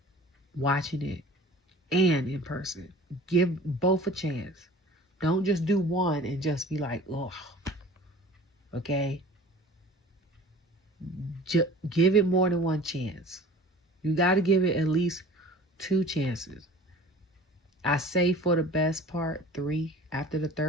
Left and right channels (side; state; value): both; normal; correlation 0.44